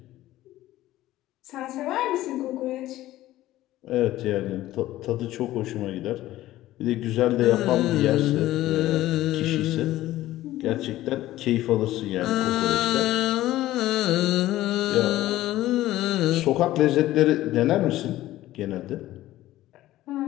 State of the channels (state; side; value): quieter; right; 15.3 dB